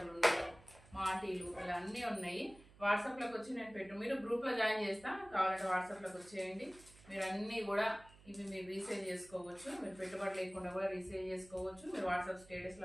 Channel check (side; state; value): right; noise; hum, 23 dB below the sound